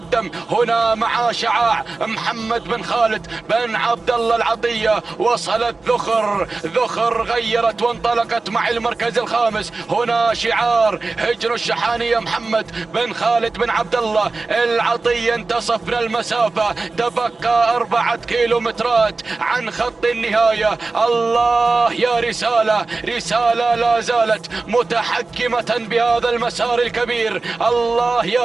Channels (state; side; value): quieter; left; 3.7 dB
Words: هنا مع شعاع محمد بن خالد بن عبد الله العطية. وصلت ذخر غيرت وانطلقت مع المركز الخامس هنا شعار هجن الشحانية. محمد بن خالد بن عبد الله العطية انتصفنا المسافة، تبقى 4 كيلومترات عن خط النهاية. الله يا رسالة لا زالت متحكمة بهذا المسار الكبير. الله يا